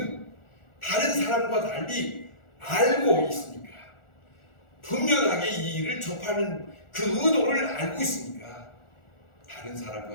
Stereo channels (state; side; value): late; right; 1.4 ms